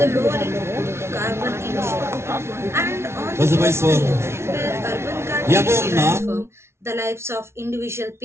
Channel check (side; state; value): left; late; 0.13 ms